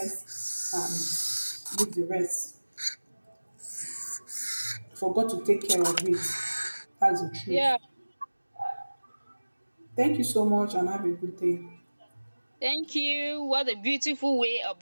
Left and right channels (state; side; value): inverted; both; correlation -1.00